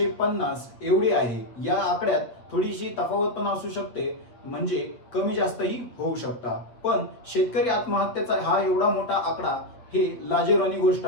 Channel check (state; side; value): late; right; 8.4 ms